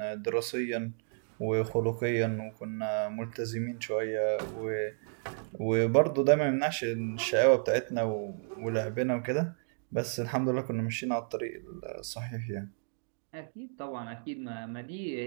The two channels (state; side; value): silent; left; digital silence